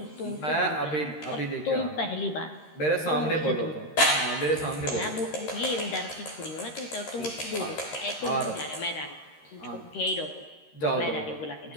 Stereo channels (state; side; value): late; right; 13 ms